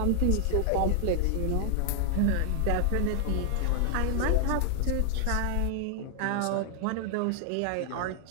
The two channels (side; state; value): both; different; correlation 0.00